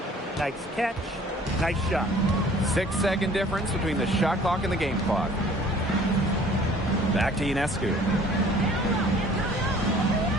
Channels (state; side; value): normal; both; correlation 0.52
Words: nice catch, nice shot. 6-second difference between the shot clock and the game clock. Back to Ionescu.